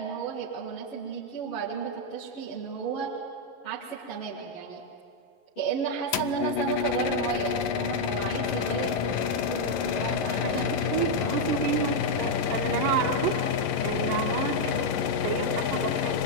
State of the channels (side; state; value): right; late; 11 ms